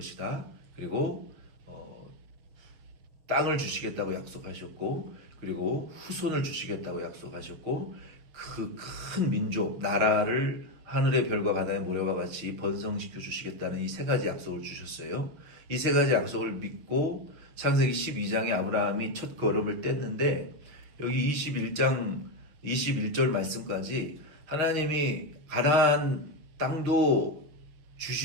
그리고 땅을 주시겠다고 약속하셨고, 그리고 후손을 주시겠다고 약속하셨고, 그 큰 민족, 나라를 하늘의 별과 바다의 모래와 같이 번성시켜 주시겠다는 이 세 가지 약속을 주셨어요. 이 세 가지 약속을 믿고 창세기 12장에 아브라함이 첫 걸음을 뗐는데, 여기 21장 21절 말씀까지 하나님이 가나안 땅도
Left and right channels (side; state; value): left; late; 6.3 ms